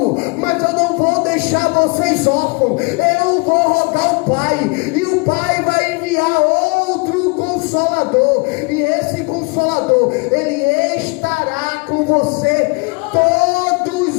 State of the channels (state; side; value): quieter; right; 30.2 dB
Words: mas eu não vou deixar vocês órfãos. Eu vou rogar o Pai, e o Pai vai enviar outro Consolador, e esse Consolador, Ele estará com você